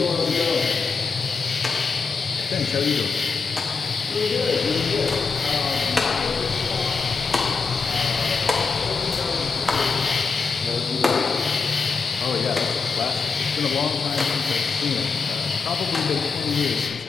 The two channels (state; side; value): quieter; right; 4.8 dB